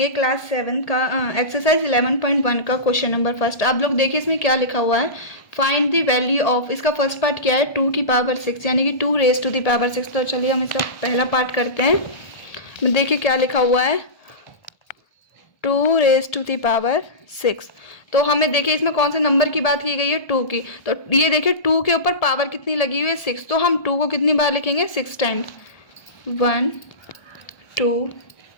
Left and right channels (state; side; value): late; right; 1.3 ms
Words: क्लास 7 का एक्सरसाइज 11.1 का क्वेश्चन नंबर फर्स्ट। आप लोग देखिए इसमें क्या लिखा हुआ है, फाइंड द वैल्यू ऑफ। इसका फर्स्ट पार्ट क्या है, 2 की पावर 6 यानी कि 2 रेज टू द पावर 6। तो चलिए हम इसका पहला पार्ट करते हैं। देखिए क्या लिखा हुआ है, 2 रेज टू द पावर 6। तो हमें देखिए इसमें कौन से नंबर की बात की गई है, 2 की। तो ये देखिए 2 के ऊपर पावर कितनी लगी हुई है, 6। तो हम 2 को कितनी बार लिखेंगे, 6 टाइम्स। 1 2